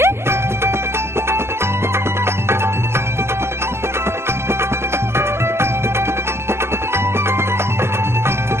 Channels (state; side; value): late; left; 0.12 ms